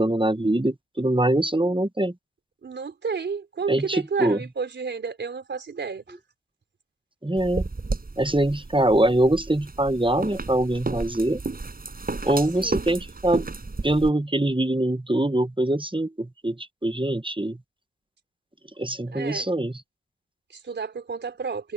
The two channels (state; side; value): normal; both; correlation 0.74